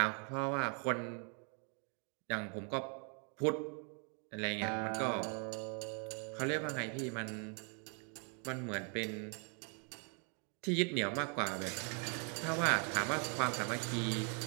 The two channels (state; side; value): quieter; left; 39.4 dB